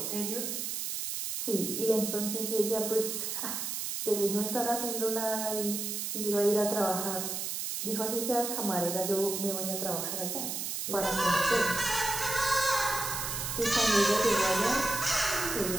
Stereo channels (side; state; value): right; noise; hiss, 3 dB below the sound